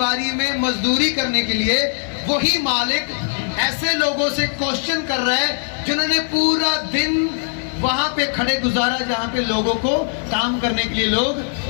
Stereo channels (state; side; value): silent; right; digital silence